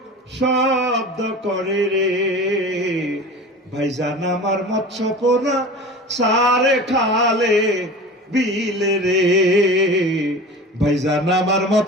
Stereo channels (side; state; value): both; normal; correlation 0.35